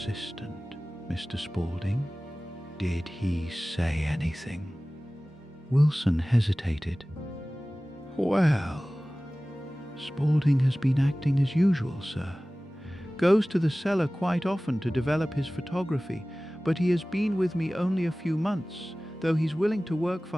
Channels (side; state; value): both; normal; correlation 0.98